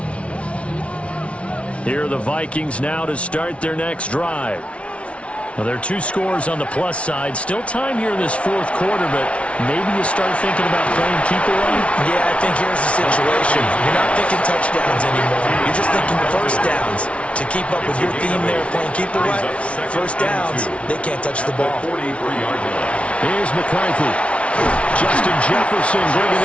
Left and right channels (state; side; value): late; right; 0.062 ms